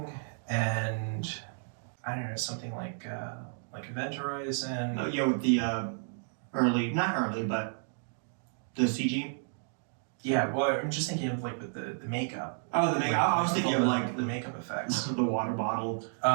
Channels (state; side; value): silent; left; digital silence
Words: and I don't know, something like Event Horizon. No, with the not early, but the CG. Yeah, well, I'm just thinking of like with the makeup. Oh, the makeup. I was thinking of like the makeup effects. the water bottle.